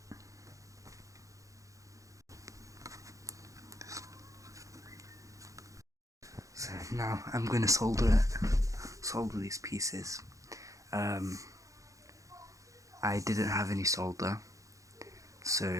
So now I'm gonna solder these pieces. I didn't have any solder,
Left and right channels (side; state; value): left; late; 0.16 ms